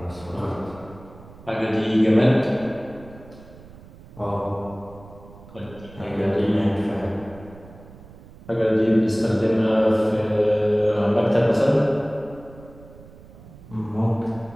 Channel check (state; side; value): noise; right; rumble, 20 dB below the sound